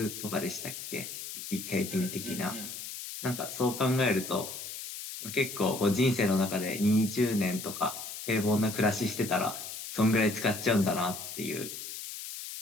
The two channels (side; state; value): left; noise; hiss, 9 dB below the sound